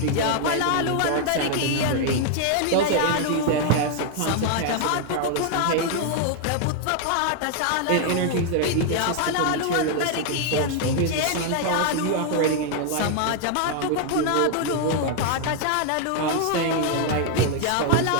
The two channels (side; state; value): both; different; correlation 0.00